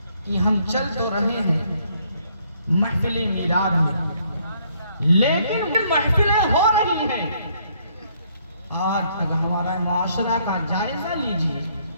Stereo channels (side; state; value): both; inverted; correlation -0.67